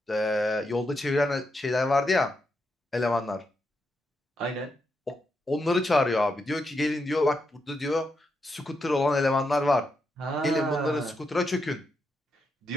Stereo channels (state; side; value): normal; both; correlation 0.83